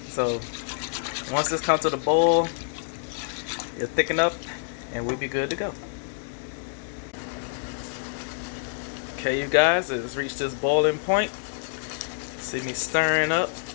So once this comes to the boil, it'll thicken up and we'll be good to go. Okay, you guys, it's reached this boiling point. See me stirring up,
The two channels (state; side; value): silent; right; digital silence